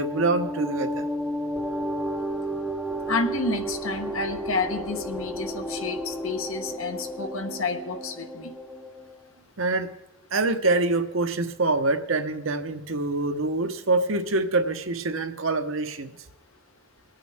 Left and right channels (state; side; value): normal; both; correlation -0.02